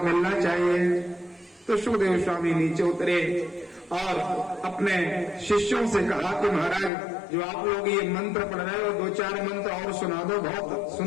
मिलना चाहिए। तो सुखदेव स्वामी नीचे उतरे और अपने शिष्यों से कहा कि महाराज जो आप लोग ये मंत्र पढ़ रहे हो, 2-4 मंत्र और सुना दो, बहुत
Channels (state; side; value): drops out; right; at 6.9 s